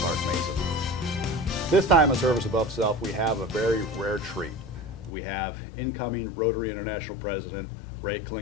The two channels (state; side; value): drops out; right; at 5.1 s